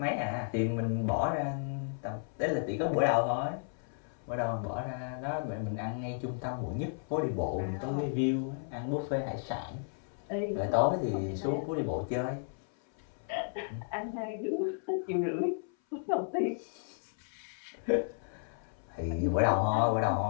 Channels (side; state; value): right; silent; 56 dB below the other